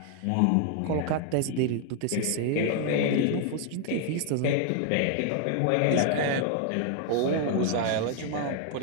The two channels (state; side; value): different; both; correlation 0.00